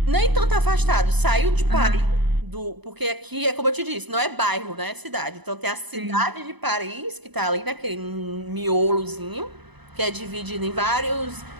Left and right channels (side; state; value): left; late; 0.99 ms